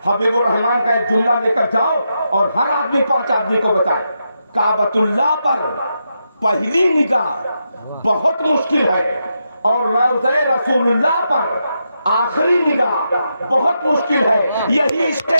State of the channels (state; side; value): inverted; both; correlation -0.84